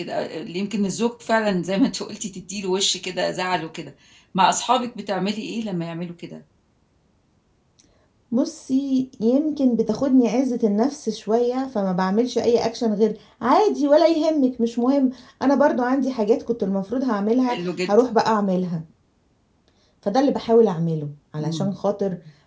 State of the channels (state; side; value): identical; both; correlation 1.00